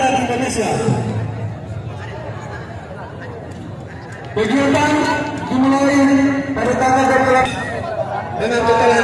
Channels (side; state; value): both; identical; correlation 1.00